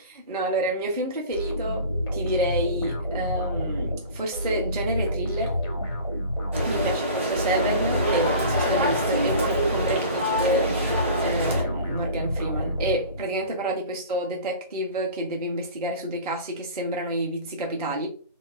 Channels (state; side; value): inverted; both; correlation -0.40